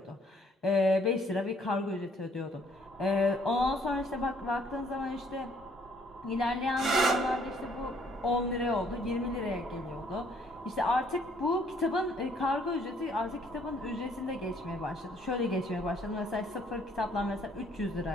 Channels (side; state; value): both; normal; correlation 0.64